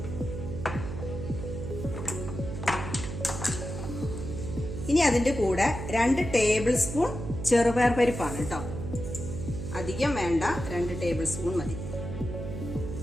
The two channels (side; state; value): right; noise; hum, 6 dB below the sound